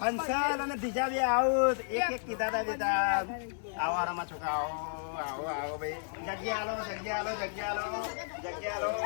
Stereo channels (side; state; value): right; silent; digital silence